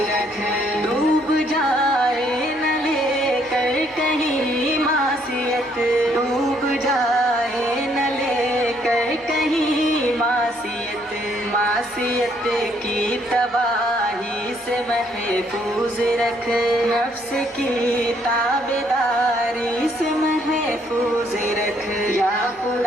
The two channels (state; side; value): normal; both; correlation 0.68